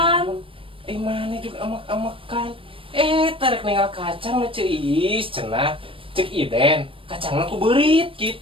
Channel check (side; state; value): left; late; 0.26 ms